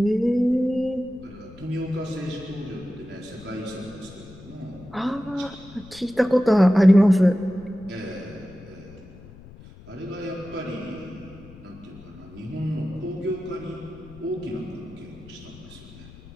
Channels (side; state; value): left; noise; rumble, 19 dB below the sound